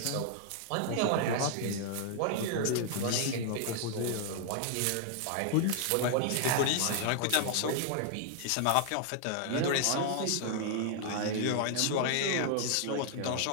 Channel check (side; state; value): both; different; correlation 0.00